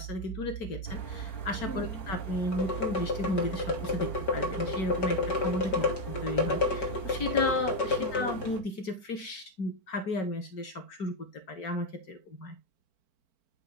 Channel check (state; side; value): late; right; 4.5 ms